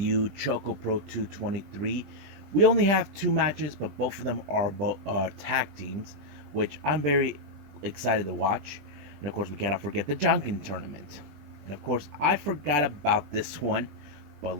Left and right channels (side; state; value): left; late; 20 ms